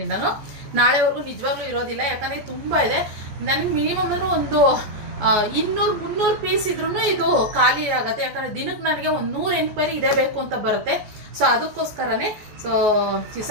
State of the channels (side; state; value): left; late; 14 ms